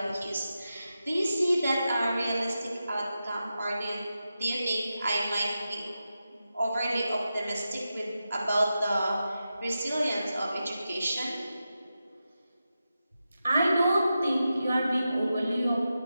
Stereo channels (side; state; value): both; inverted; correlation -0.90